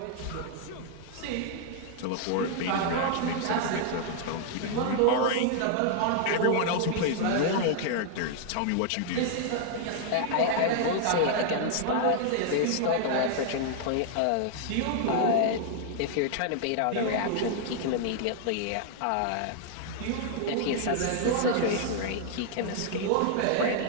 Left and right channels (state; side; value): different; both; correlation -0.01